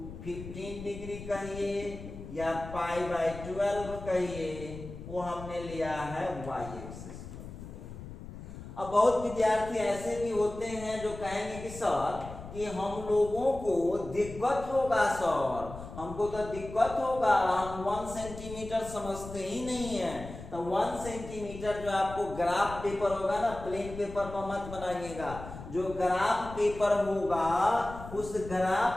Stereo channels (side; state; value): left; noise; rumble, 12 dB below the sound